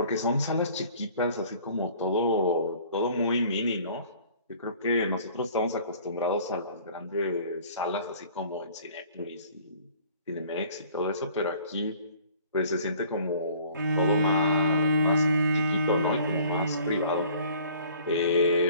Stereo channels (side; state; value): both; inverted; correlation -0.52